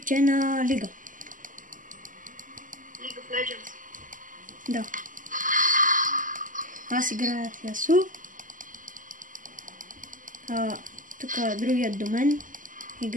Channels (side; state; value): left; late; 0.38 ms